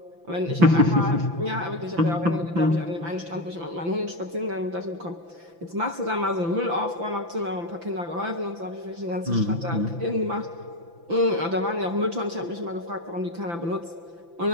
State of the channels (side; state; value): left; late; 5.9 ms